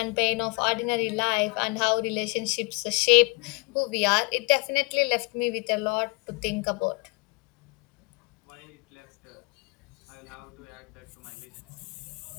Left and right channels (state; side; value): quieter; right; 28.0 dB